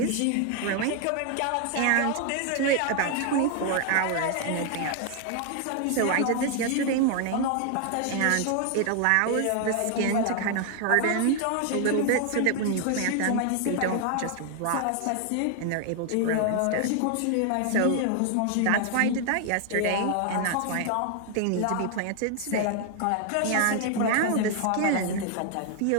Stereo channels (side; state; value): both; different; correlation 0.00